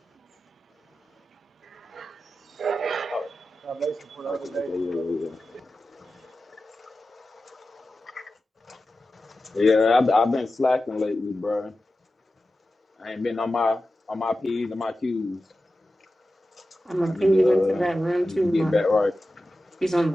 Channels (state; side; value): normal; both; correlation 0.93